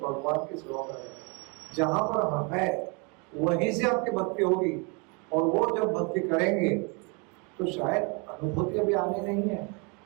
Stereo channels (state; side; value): quieter; left; 32.6 dB